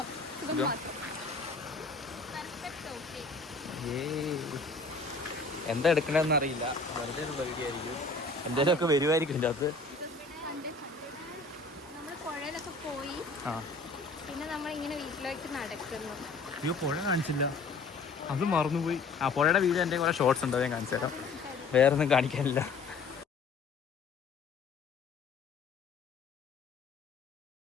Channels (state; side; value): quieter; right; 4.0 dB